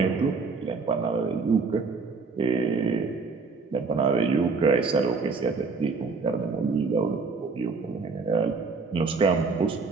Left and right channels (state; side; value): quieter; left; 4.5 dB